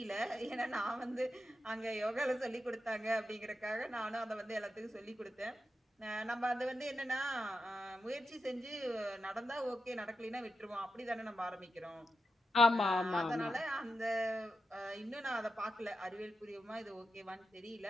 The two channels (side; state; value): both; normal; correlation 0.88